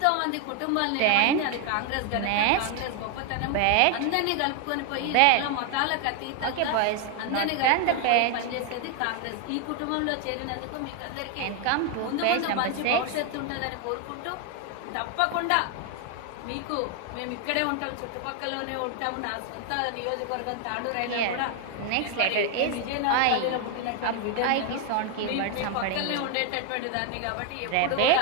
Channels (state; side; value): different; both; correlation 0.00